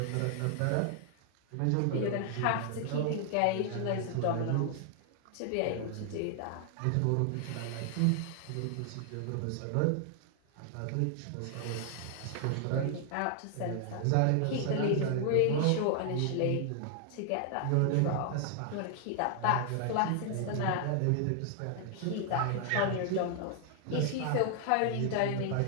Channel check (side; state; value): both; different; correlation 0.00